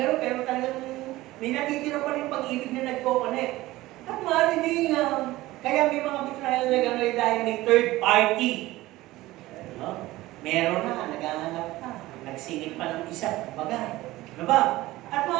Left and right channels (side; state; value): left; quieter; 17.8 dB